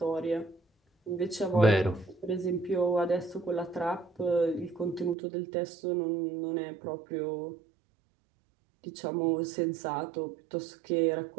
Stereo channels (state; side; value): drops out; left; at 5.2 s